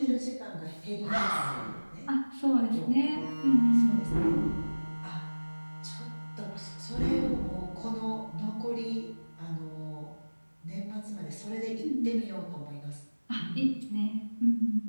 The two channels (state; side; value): inverted; both; correlation -1.00